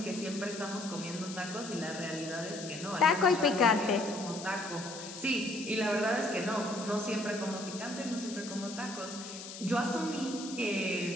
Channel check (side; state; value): left; noise; hiss, 11 dB below the sound